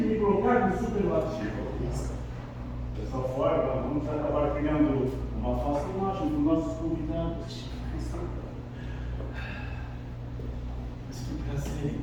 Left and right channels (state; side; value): identical; both; correlation 1.00